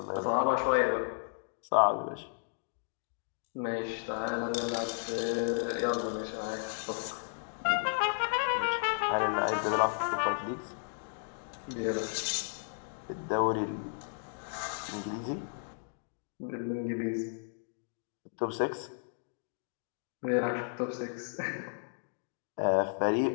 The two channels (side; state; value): right; silent; digital silence